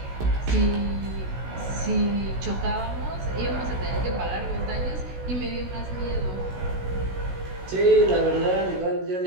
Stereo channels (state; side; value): late; left; 16 ms